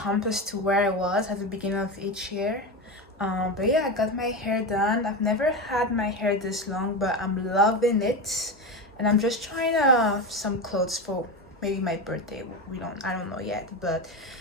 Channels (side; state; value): both; normal; correlation 0.19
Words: to where I was at the beginning of each year. But yeah, I got my hair done. I've never had my hair this long, but I'm loving it. And I'm just trying some clothes for maybe my birthday. I don't know yet, but